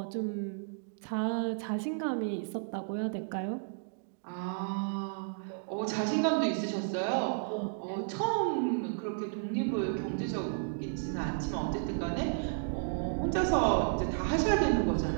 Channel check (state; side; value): silent; left; digital silence